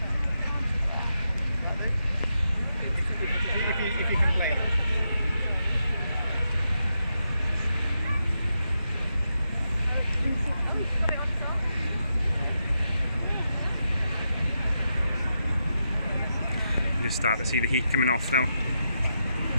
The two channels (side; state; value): both; inverted; correlation -0.85